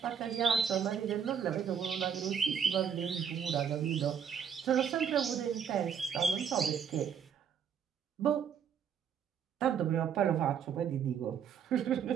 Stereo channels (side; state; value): left; quieter; 7.8 dB